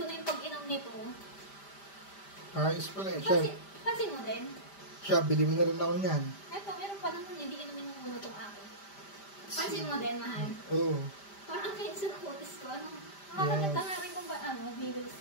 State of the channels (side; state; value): right; late; 5.0 ms